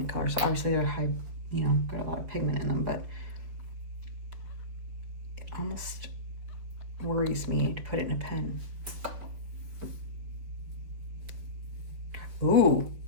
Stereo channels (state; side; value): late; left; 5.1 ms